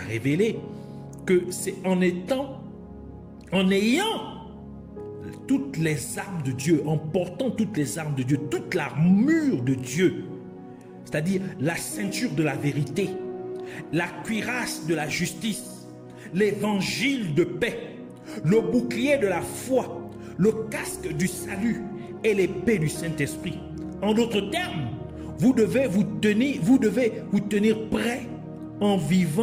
que c'est en ayant toutes les armes de Dieu, en portant toutes les armes de Dieu, toute l'armure de Dieu, c'est-à-dire la ceinture de la vérité, la cuirasse de la justice, l'évangile de paix, le bouclier de la foi, le casque du salut et l'épée du Saint-Esprit. En d'autres termes, vous devez vous tenir prêt en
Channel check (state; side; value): identical; both; correlation 1.00